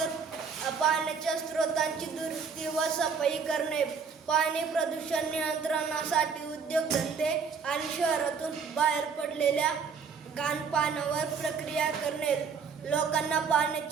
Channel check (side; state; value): left; quieter; 5.8 dB